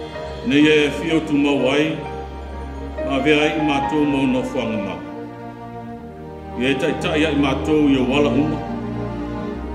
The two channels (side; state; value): both; identical; correlation 1.00